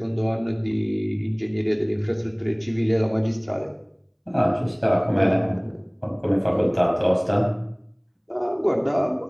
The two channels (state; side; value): identical; both; correlation 1.00